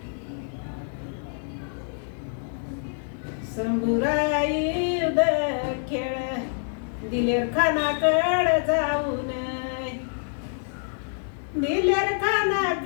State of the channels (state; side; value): silent; right; digital silence